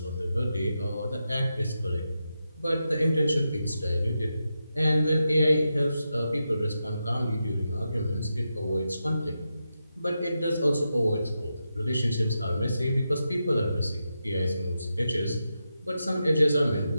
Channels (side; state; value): both; inverted; correlation -0.88